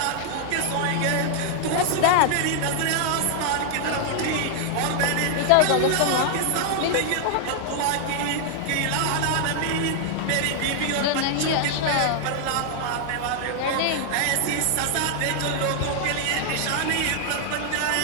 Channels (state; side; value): different; both; correlation 0.00